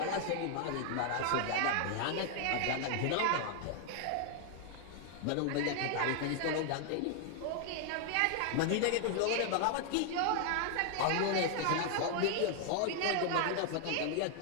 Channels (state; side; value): different; both; correlation 0.00